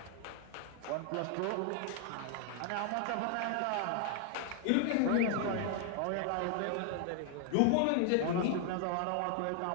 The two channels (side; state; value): both; different; correlation 0.00